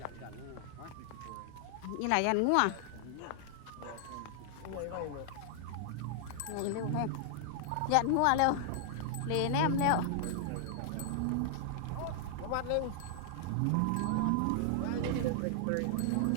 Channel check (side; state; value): both; different; correlation -0.01